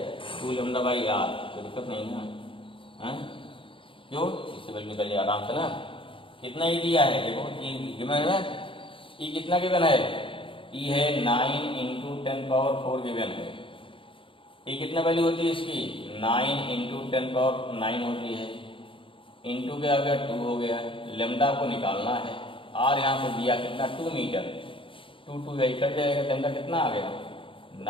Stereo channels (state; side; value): late; right; 0.25 ms